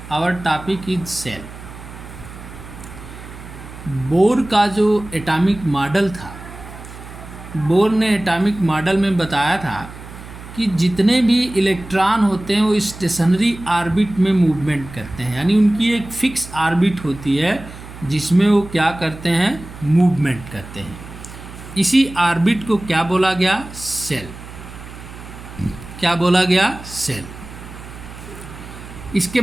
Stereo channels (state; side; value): noise; right; hum, 15 dB below the sound